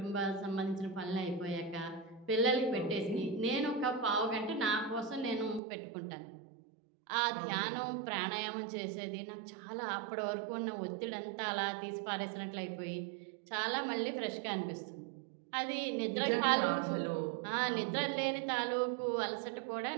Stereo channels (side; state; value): left; drops out; at 5.6 s